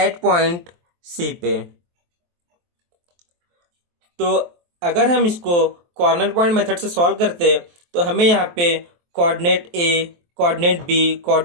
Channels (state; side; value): late; left; 23 ms